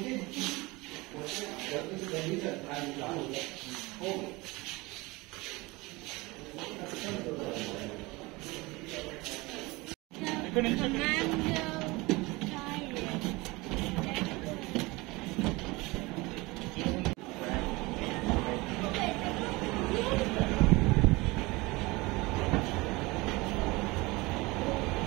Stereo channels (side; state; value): left; quieter; 23.1 dB